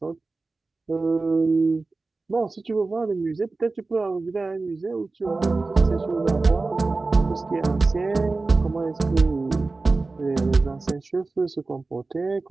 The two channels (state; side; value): quieter; left; 3.6 dB